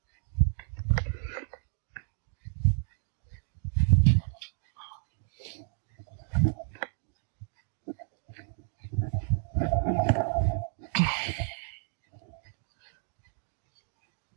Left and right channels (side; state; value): left; silent; digital silence